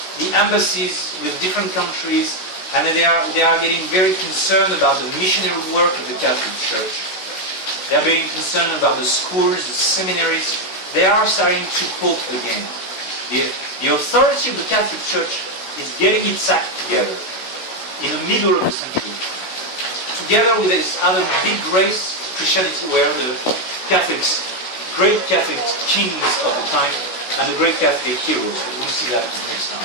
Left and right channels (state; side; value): late; right; 16 ms